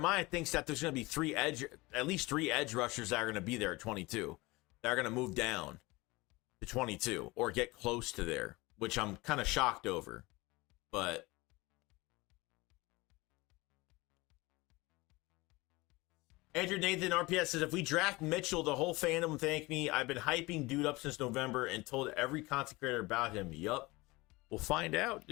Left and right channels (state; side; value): quieter; right; 22.5 dB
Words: thinks that there's going to be at least 3 edge rushers that are going to be there at 22. That are going to move down to 22 or get close to there, which I'm kind of shocked over. But Andrew Nathan RPS says, if we draft Mitchell, the whole fandom thank me. I've been hyping dude up since November and told every content creator about him. Yup. We'll find out,